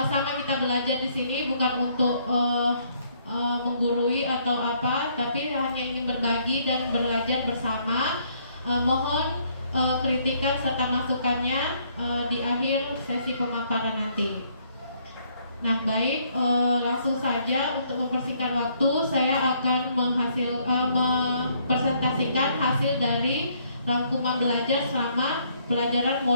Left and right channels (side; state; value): both; inverted; correlation -0.67